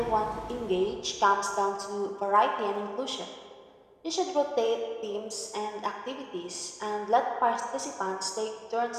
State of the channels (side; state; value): both; identical; correlation 1.00